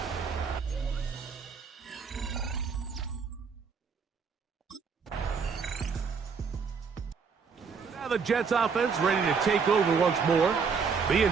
Now the Jets offense ready to take over once more. The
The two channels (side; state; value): left; quieter; 5.7 dB